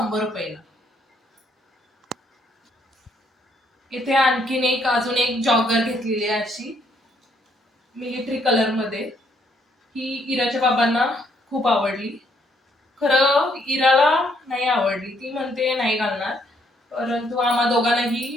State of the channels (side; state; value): both; normal; correlation 0.70